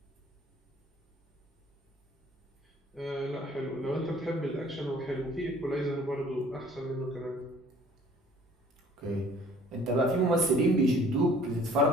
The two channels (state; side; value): normal; both; correlation 0.53